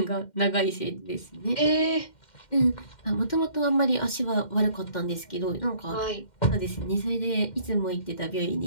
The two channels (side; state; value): right; late; 2.1 ms